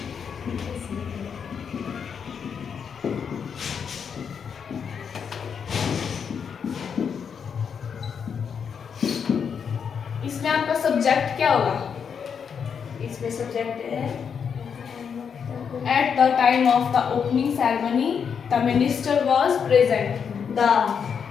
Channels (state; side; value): quieter; right; 6.9 dB